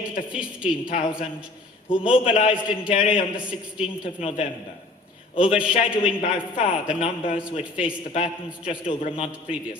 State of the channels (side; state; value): right; quieter; 3.0 dB